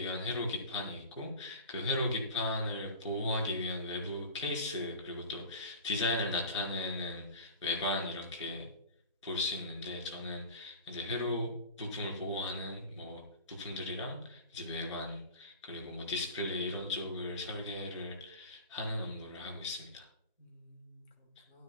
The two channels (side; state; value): both; inverted; correlation -0.34